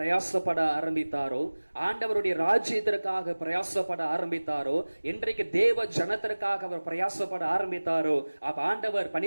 ஆரம்பித்தாரோ, ஆண்டவருடைய ராஜ்யத்திற்காக பிரயாசப்பட ஆரம்பித்தாரோ, என்றைக்கு தேவ ஜனத்திற்காக அவர் பிரயாசப்பட ஆரம்பித்தாரோ, அப்ப ஆண்டவர்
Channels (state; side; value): inverted; both; correlation -1.00